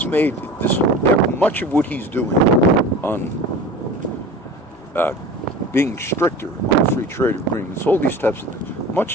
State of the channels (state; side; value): normal; both; correlation 0.37